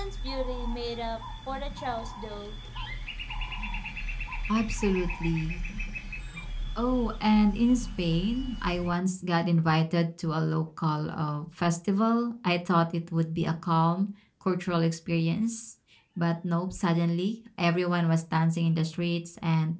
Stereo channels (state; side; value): identical; both; correlation 1.00